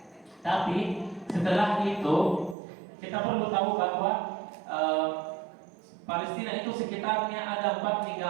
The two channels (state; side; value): drops out; left; at 2.6 s